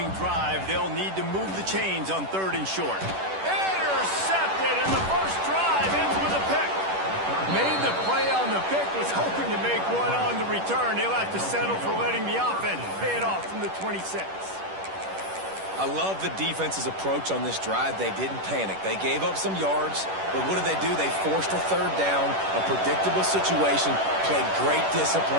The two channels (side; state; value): left; late; 10 ms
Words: drive, they'll need to move the chains on 3rd and short. Intercepted, and the first drive ends with a pick. Made the play on the pick, was hoping to make one on the return. He'll have to settle for letting the offense pay it off from the 26. I love the defense's approach on this drive. They didn't panic. They gave up some yards, but what did they do? They forced a 3rd down, a predictable situation, played great